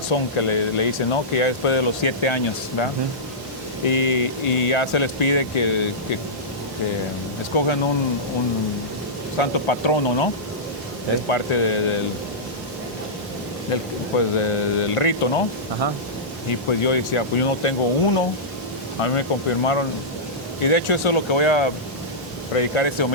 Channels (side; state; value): both; normal; correlation -0.14